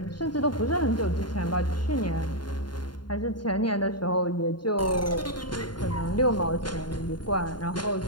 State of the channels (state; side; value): late; right; 0.71 ms